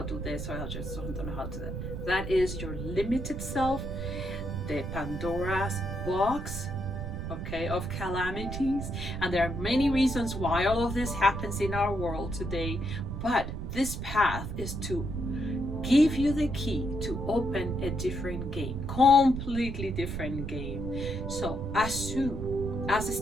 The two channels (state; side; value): noise; right; rumble, 5 dB below the sound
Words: to do this, or I just don't know how to do that. That is your limited self, the Pandora's box, okay, of calamities. And there are many reasons why all of this happens in our world today, but this path is to give you the key to open a different game, completely different game. So assume as a